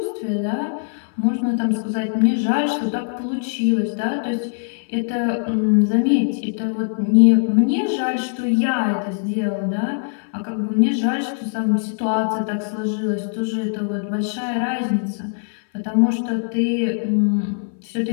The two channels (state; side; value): silent; right; 65 dB below the other